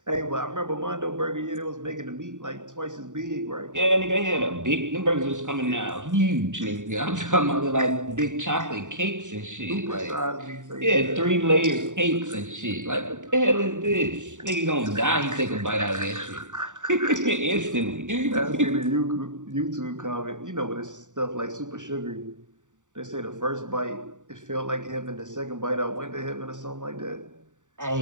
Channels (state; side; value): late; left; 0.86 ms